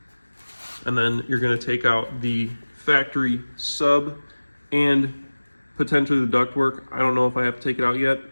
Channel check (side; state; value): both; inverted; correlation -1.00